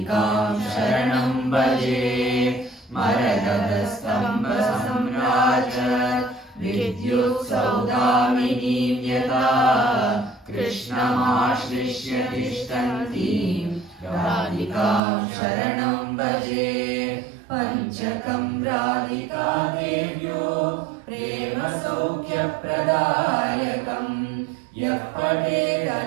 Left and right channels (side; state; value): left; drops out; at 15.0 s